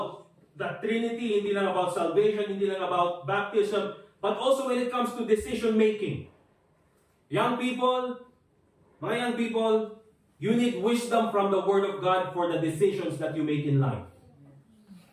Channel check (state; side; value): identical; both; correlation 1.00